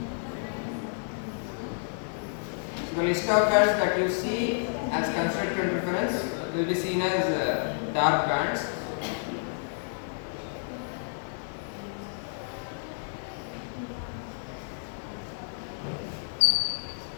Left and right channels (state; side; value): silent; right; digital silence